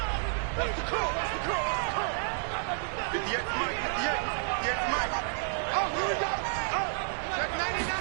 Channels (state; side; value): silent; left; digital silence